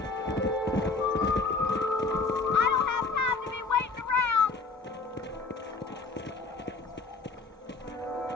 I don't have time to be waiting around.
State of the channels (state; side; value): quieter; right; 4.0 dB